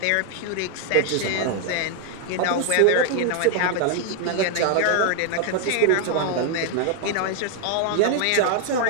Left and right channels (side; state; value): both; different; correlation 0.00